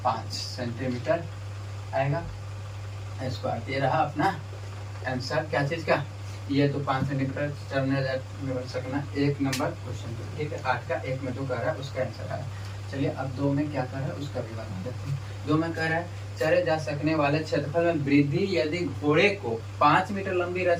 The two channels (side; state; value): both; identical; correlation 1.00